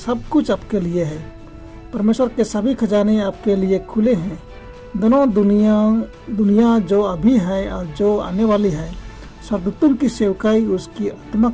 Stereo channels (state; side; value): identical; both; correlation 1.00